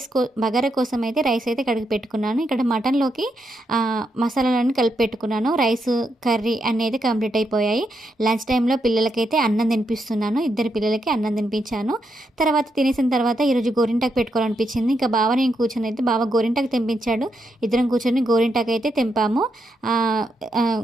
బగారా కోసం అయితే రైస్ అయితే కడిగి పెట్టుకున్నాను. ఇక్కడ మటన్లోకి మసాలాలన్నీ కలిపి పెట్టుకున్నాను. రైస్ కర్రీ అనేది కంప్లీట్ అయిపోయాయి. లంచ్ టైంలో పిల్లలకైతే అన్నం తినిపిస్తున్నాను. ఇద్దరు పిల్లలకి అన్నం తినిపించాను. తర్వాత తినేసిన తర్వాత ఈరోజు గోరింటాకు పెట్టుకోవాలనిపించింది. ఇంకా బావ నేను కూర్చొని అయితే బావ గోరింటాకు తెంపించాడు. ఇద్దరం కూర్చొని గోరింటాకు అయితే తెంపాము.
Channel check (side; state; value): both; normal; correlation 0.81